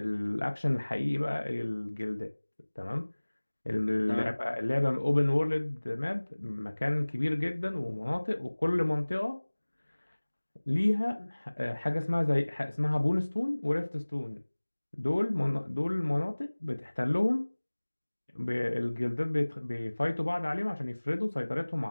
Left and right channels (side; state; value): both; inverted; correlation -1.00